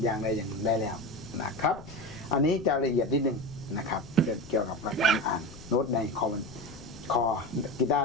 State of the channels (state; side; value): noise; left; rumble, 18 dB below the sound